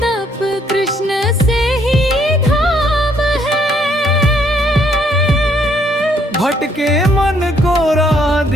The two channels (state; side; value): normal; both; correlation 0.68